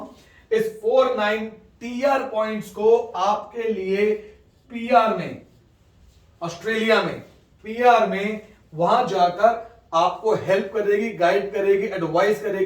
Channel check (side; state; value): both; identical; correlation 1.00